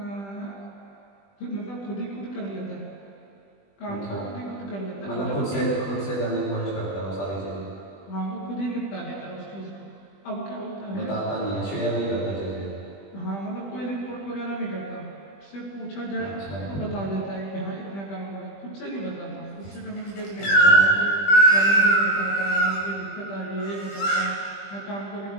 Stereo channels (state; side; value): late; right; 20 ms